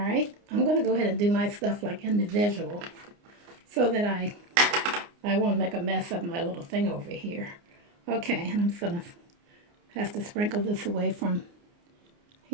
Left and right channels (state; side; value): late; left; 29 ms